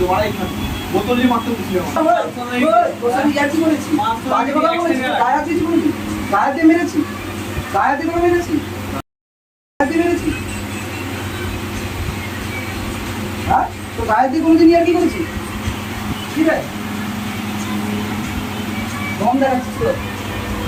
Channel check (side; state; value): both; identical; correlation 1.00